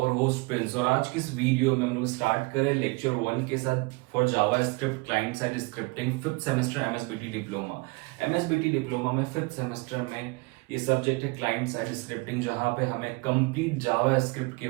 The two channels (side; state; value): left; quieter; 27.1 dB